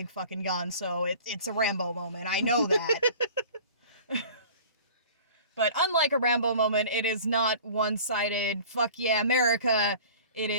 fucking gun, so it's a Rambo moment. I know that. But unlike a Rambo moment, it is not one-sided, fuck yeah, America. It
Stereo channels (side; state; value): both; inverted; correlation -0.44